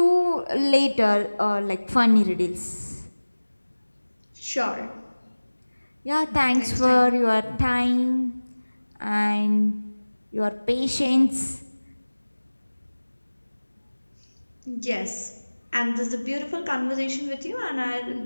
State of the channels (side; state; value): both; inverted; correlation -1.00